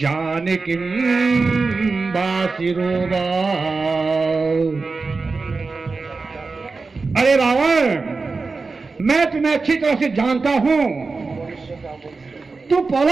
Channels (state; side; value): quieter; left; 4.1 dB